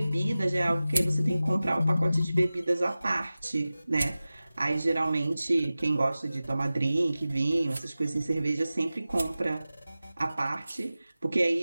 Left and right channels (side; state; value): both; inverted; correlation -0.96